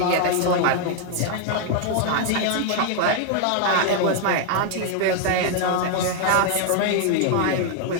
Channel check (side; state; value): both; different; correlation 0.00